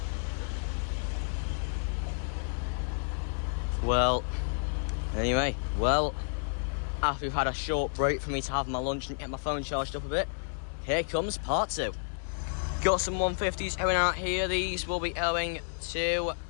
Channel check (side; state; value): right; silent; digital silence